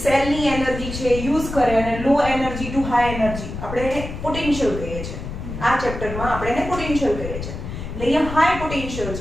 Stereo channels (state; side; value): noise; left; rumble, 8 dB below the sound